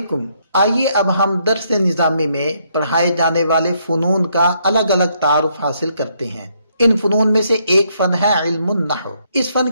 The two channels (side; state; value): both; inverted; correlation -0.73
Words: آئیے اب ہم درس نظامی میں پڑھائے جانے والے فنون کا الگ الگ تعارف حاصل کرتے ہیں۔ ان فنون میں سے ایک فن ہے علم النحو۔ اس فن